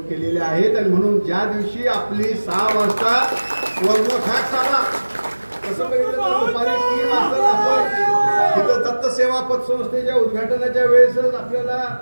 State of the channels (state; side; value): inverted; both; correlation -1.00